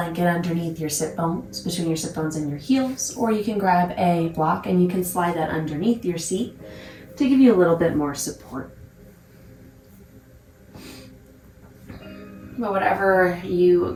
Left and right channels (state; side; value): identical; both; correlation 1.00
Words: underneath your sit bones, between your sit bones and your heels, or you can grab a block and you can slide that underneath your seat to give you a little bit more support. But whatever you